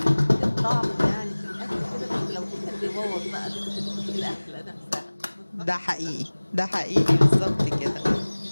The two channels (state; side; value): inverted; both; correlation -1.00